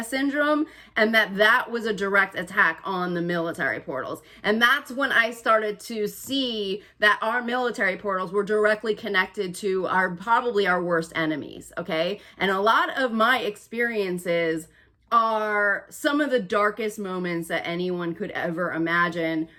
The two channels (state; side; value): identical; both; correlation 1.00